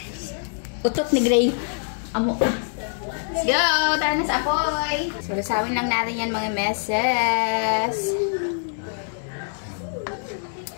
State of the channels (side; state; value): right; silent; digital silence